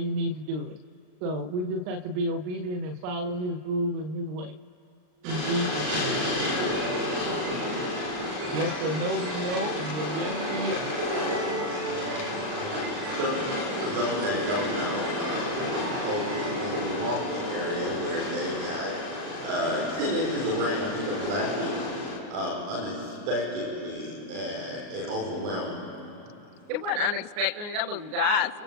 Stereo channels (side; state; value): left; late; 39 ms